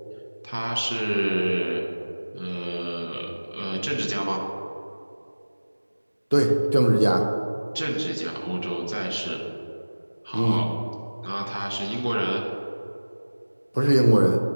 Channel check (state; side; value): inverted; both; correlation -1.00